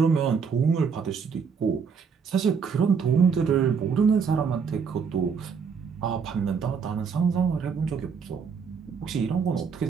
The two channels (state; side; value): quieter; left; 6.0 dB